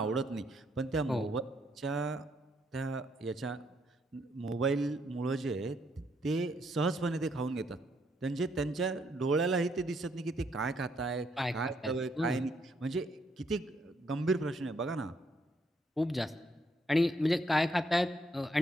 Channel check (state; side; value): normal; both; correlation 0.73